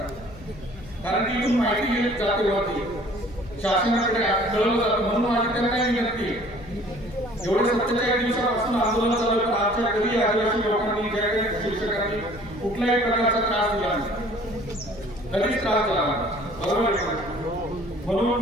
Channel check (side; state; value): left; noise; hum, 18 dB below the sound